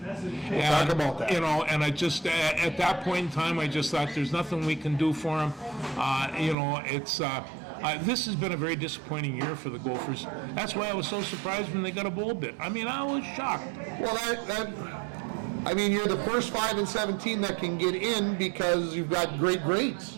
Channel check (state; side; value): drops out; left; at 6.6 s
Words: We'll talk about that. And I just at that point in time, I just thought there's nothing we can do for them. This has been a very disappointing year for the Gophers. That's why I was so surprised when they got a bowl bid. I mean, I was shocked. Well, you're the first 5 and 17 that can get in because you've got great grades.